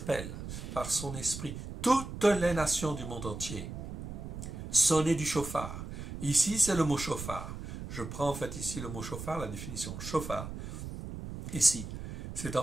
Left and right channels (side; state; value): right; noise; rumble, 8 dB below the sound